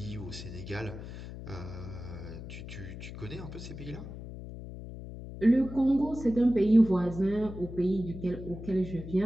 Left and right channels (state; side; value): noise; left; hum, 11 dB below the sound